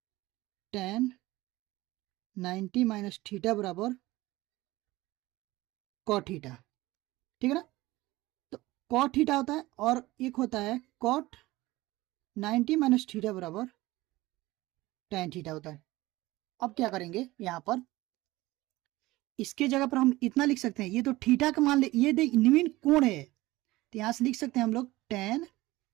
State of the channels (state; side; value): quieter; left; 18.9 dB